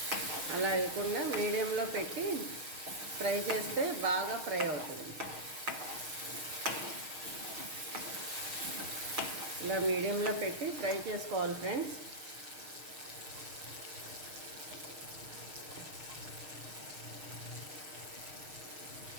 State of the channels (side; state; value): left; late; 6.5 ms